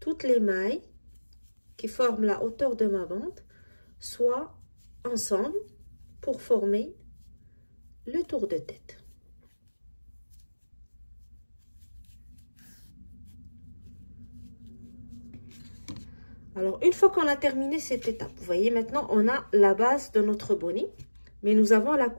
les mailles qui forment la hauteur de ma bande soient ensemble pour former le tour de tête. Alors, une fois qu'on a terminé cette étape, vous voyez, maintenant, on a la base de notre bonnet, mais nous avons la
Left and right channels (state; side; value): inverted; both; correlation -1.00